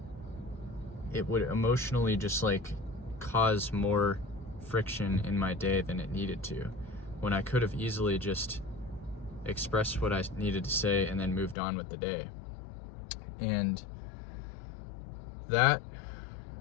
it would emotionally just cause more friction in my day than it needed to, when I could have easily just expressed what I needed to say and then moved on with the day. And that,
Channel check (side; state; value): right; drops out; at 11.6 s